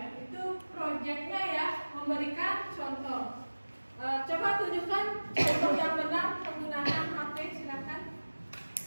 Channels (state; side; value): inverted; both; correlation -1.00